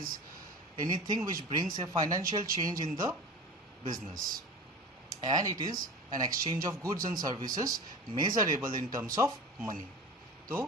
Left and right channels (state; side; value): normal; both; correlation 0.33